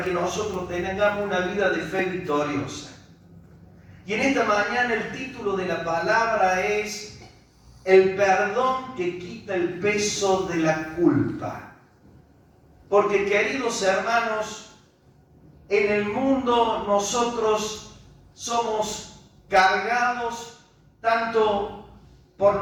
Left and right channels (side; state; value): both; identical; correlation 1.00